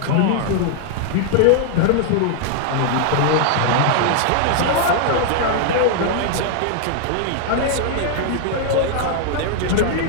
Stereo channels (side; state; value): both; different; correlation 0.00